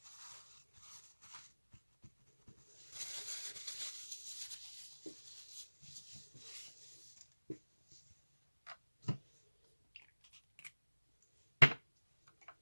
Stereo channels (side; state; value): both; inverted; correlation -1.00